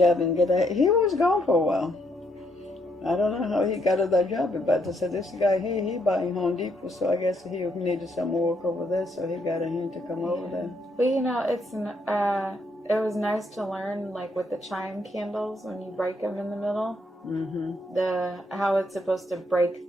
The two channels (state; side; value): normal; both; correlation 0.74